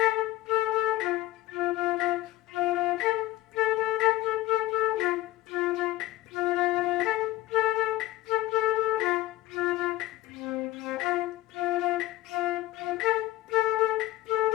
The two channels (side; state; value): right; quieter; 16.9 dB